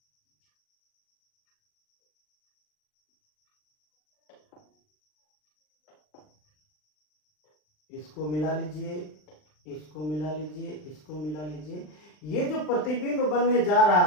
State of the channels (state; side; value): late; right; 39 ms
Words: इसको मिला लीजिए, इसको मिला लीजिए, इसको मिला लीजिए। ये जो प्रतिबिंब बनने जा